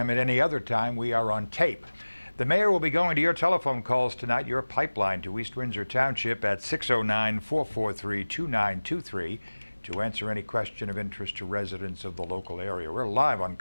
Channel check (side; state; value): both; inverted; correlation -1.00